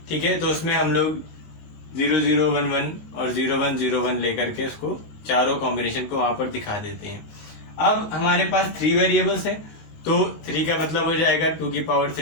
ठीक है, तो उसमें हम लोग 0 0 1 1 और 0 1 0 1 लेकर के उसको चारों कॉम्बिनेशन को वहां पर दिखा देते हैं। अब हमारे पास 3 वेरिएबल्स हैं, तो 3 का मतलब हो जाएगा 2 की पावर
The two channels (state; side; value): late; right; 19 ms